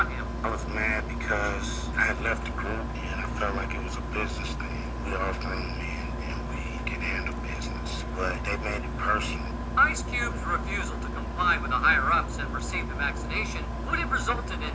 him. I was mad because I had left the group and I felt like it was a business thing. We all grown men and we can handle business, but they made it personal. Ice Cube's refusal to comply with the higher-ups and receive the vaccination would have resulted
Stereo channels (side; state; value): both; identical; correlation 1.00